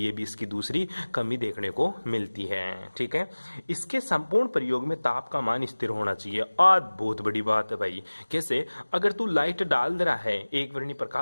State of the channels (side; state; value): both; inverted; correlation -1.00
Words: ये भी इसकी दूसरी कमी देखने को मिलती है, ठीक है। इसके संपूर्ण प्रयोग में ताप का मान स्थिर होना चाहिए। आज बहुत बड़ी बात है भाई, कैसे, अगर तू लाइट डाल रहा है एक वर्णी